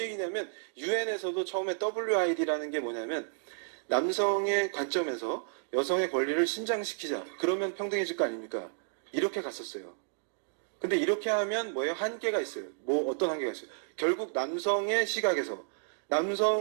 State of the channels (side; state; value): left; silent; digital silence